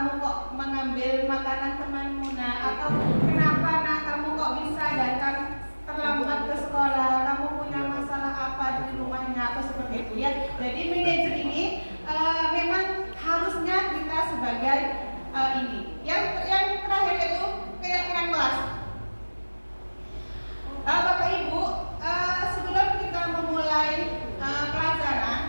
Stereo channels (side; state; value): both; inverted; correlation -1.00